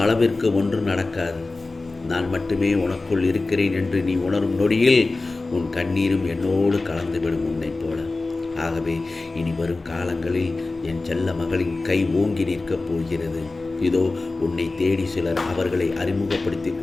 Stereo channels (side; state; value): right; quieter; 3.4 dB